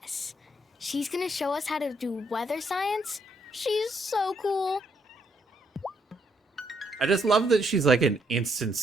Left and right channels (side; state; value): both; normal; correlation 0.73